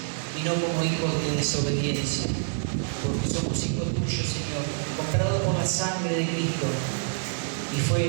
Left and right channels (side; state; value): left; silent; 58 dB below the other